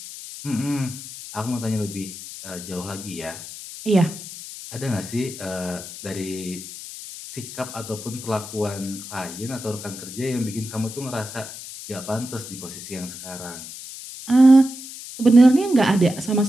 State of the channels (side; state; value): left; noise; hiss, 12 dB below the sound